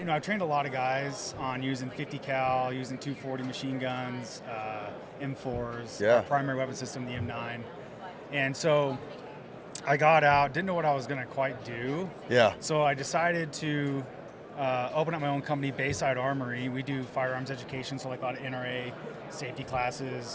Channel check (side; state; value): both; identical; correlation 1.00